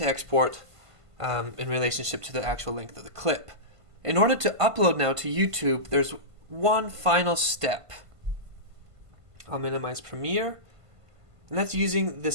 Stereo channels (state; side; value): late; left; 1.5 ms